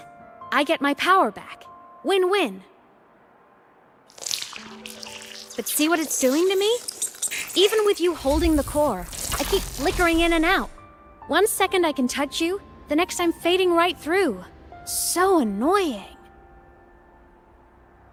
I get my power back. Win-win. But see what it's doing to me? Even with you holding the core, I keep flickering in and out. 1 second I can touch you, the next I'm fading right through. So annoying.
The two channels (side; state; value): both; identical; correlation 1.00